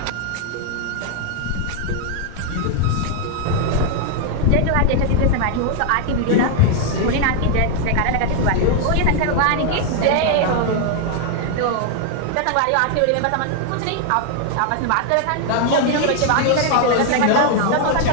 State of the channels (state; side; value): different; both; correlation 0.00